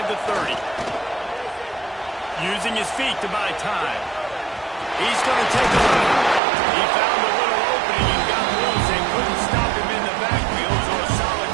the 30. Using his feet to buy time. He's going to take a look. He found a little opening and got loose. They couldn't stop him in the backfield, so a solid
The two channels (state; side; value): drops out; left; at 6.4 s